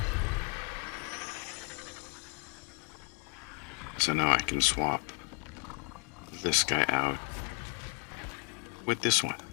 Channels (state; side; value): quieter; right; 32.6 dB